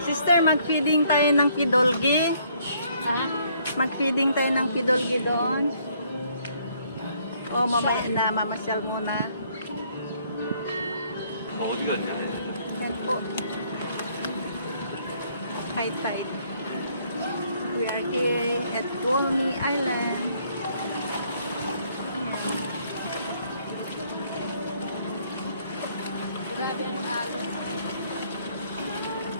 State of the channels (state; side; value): inverted; both; correlation -0.66